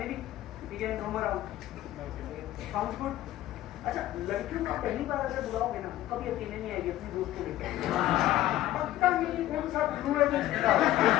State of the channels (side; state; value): right; quieter; 14.3 dB